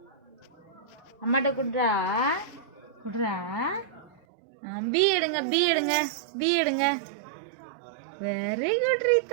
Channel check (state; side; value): drops out; left; at 4.2 s